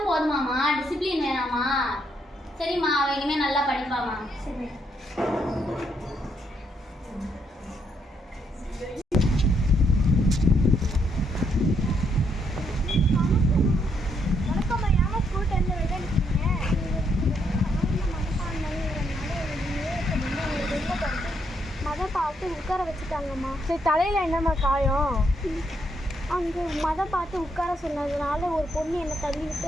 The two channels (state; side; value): normal; both; correlation 0.75